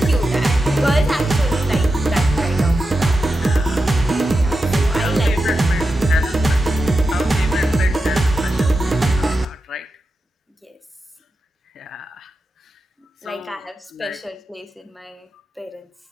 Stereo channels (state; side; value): normal; both; correlation 0.90